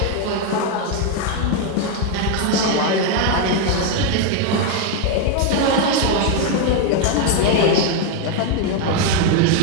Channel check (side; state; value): both; different; correlation 0.01